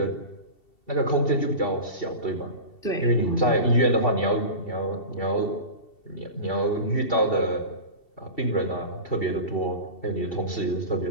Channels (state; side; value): late; right; 2.7 ms